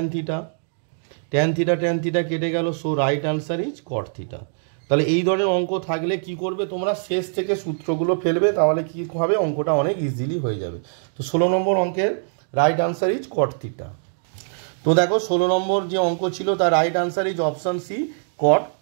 থিটা, ট্যান থিটা কেটে গেল, so right answer is cot theta. তাহলে এই ধরনের অঙ্ক থাকলে কি করবে তোমরা, শেষ থেকে সূত্রগুলো ফেলবে, তাহলে কি হবে অঙ্কটা অনেক ইজিলি হয়ে যাবে। তো 16 নম্বর অঙ্কের right answer is cot theta. তো দেখো 16 নম্বর যে অঙ্ক ছিল তার right answer is option C cot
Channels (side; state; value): left; silent; digital silence